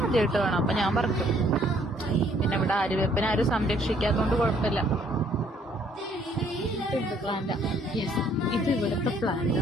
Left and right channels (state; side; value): normal; both; correlation 0.63